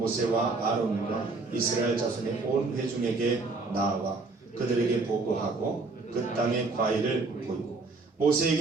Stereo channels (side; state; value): left; quieter; 3.7 dB